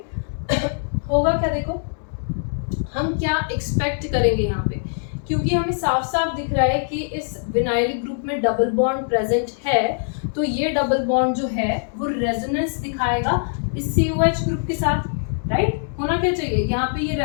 होगा क्या, देखो हम क्या एक्सपेक्ट करेंगे यहाँ पे, क्योंकि हमें साफ साफ दिख रहा है कि इस विनाइलिक ग्रुप में डबल बॉन्ड प्रेजेंट है, तो ये डबल बॉन्ड जो है वो रेजोनेंस दिखाएगा इस COH ग्रुप के साथ, राइट। होना क्या चाहिए, यहाँ पे ये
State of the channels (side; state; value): right; silent; digital silence